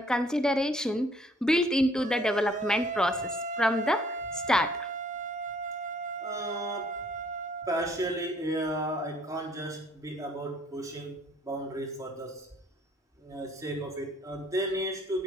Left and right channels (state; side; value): normal; both; correlation 0.61